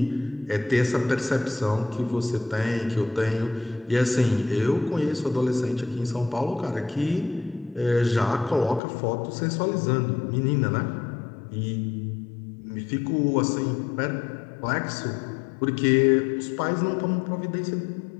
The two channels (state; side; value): drops out; right; at 8.8 s